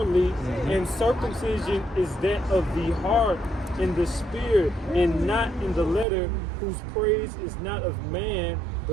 and circumcision is that of the heart in the spirit, and not in the letter, whose praise is not of man,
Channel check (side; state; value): left; drops out; at 6.1 s